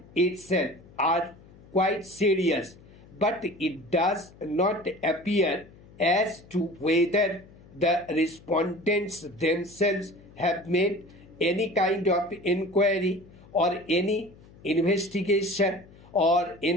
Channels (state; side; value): noise; left; hum, 23 dB below the sound